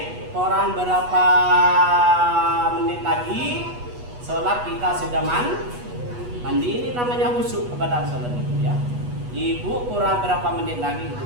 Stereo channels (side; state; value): left; late; 8.2 ms